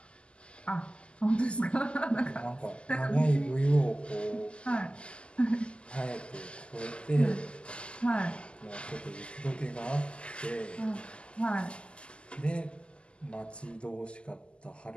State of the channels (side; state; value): right; late; 0.052 ms